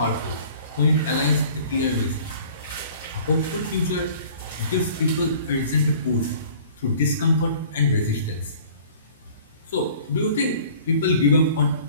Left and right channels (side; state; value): both; inverted; correlation -0.49